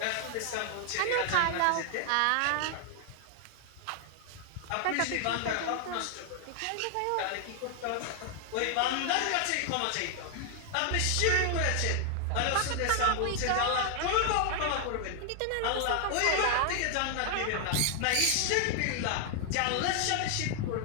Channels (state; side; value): different; both; correlation 0.00